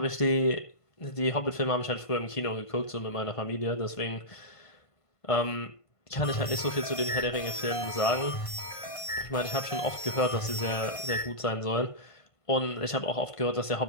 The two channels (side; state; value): right; late; 1.5 ms